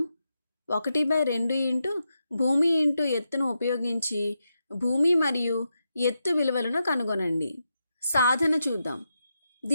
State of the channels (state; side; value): inverted; both; correlation -0.86